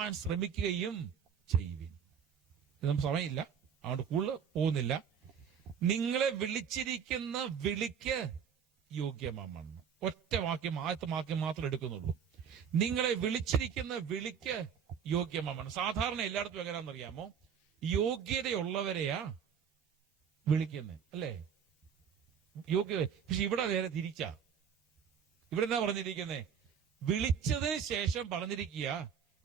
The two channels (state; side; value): quieter; left; 7.6 dB